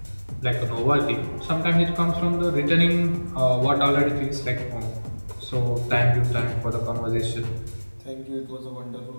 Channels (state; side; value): inverted; both; correlation -1.00